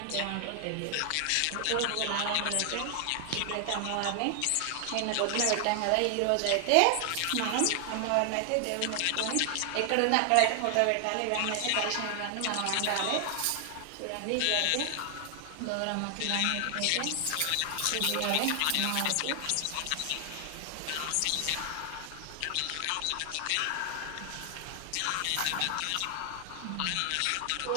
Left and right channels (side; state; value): both; different; correlation 0.00